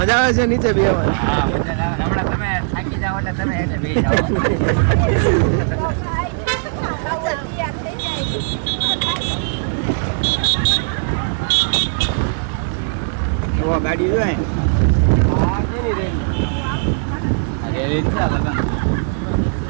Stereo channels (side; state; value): left; silent; digital silence